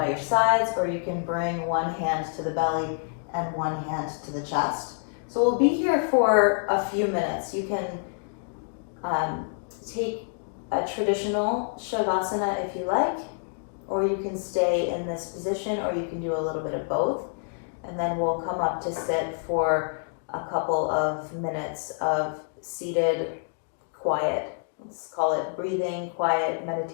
your sides, or you can bring one hand to the belly and one hand to the chest. So we'll be here for a few minutes. You can take a traditional Shavasana if you like, or you can stay in this position, or you can do a little bit of both. And then we'll come up to sit for a couple of minutes of seated quiet. Let's call it breathing, quiet,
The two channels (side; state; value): right; silent; digital silence